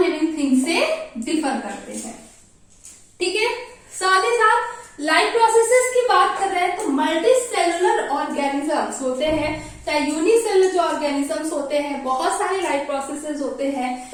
लिविंग थिंग्स से डिफर करते हैं. ठीक है, साथ ही साथ लाइफ प्रोसेसेस की बात कर रहे हैं तो मल्टी सेलुलर ऑर्गेनिजम्स होते हैं, चाहे यूनिसेलुलर जो ऑर्गेनिजम्स होते हैं, बहुत सारे लाइफ प्रोसेसेस होते हैं,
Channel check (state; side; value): identical; both; correlation 1.00